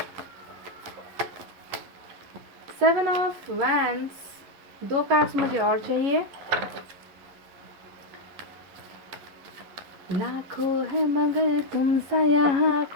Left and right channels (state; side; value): late; left; 11 ms